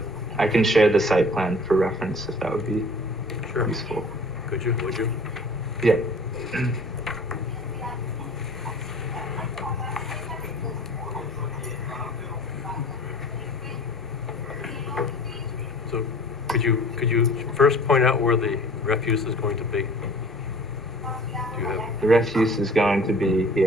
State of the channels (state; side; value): normal; both; correlation 0.47